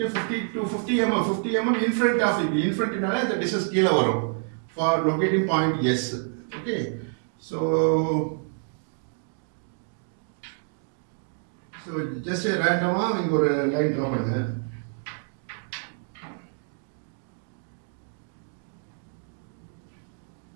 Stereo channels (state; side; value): silent; left; 60 dB below the other